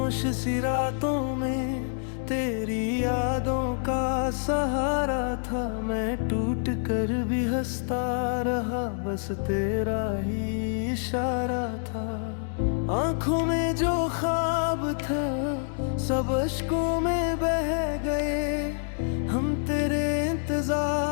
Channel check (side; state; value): right; silent; digital silence